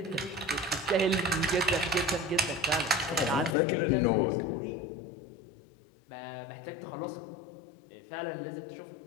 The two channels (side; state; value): right; drops out; at 3.6 s